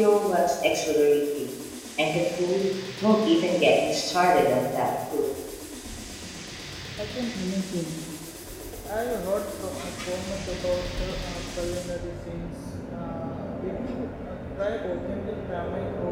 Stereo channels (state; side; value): identical; both; correlation 1.00